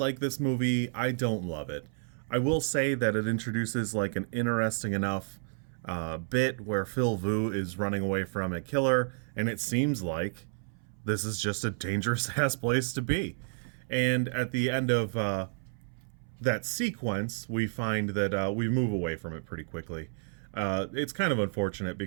this movie. I don't love it. I will say that it introduces like an interesting enough bit where Phil Vu is running away from a killer, and it seems like this is just a dangerous ass place to be. And at the end of that sequence, we find that we move away from it pretty quickly. It's kind of unfortunate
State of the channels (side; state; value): left; silent; 57 dB below the other